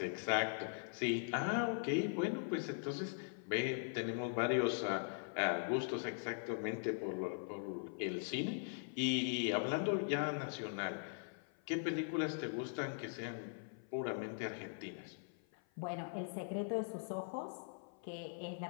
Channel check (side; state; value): right; silent; 50 dB below the other